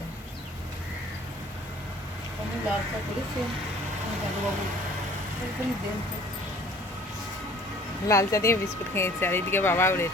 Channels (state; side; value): normal; both; correlation 0.52